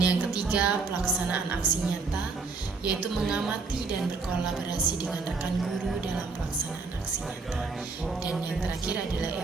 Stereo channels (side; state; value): left; quieter; 4.3 dB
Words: ketiga, pelaksanaan aksi nyata, yaitu mengamati dan berkolaborasi dengan rekan guru dalam pelaksanaan aksi nyata. Dan yang terakhir adalah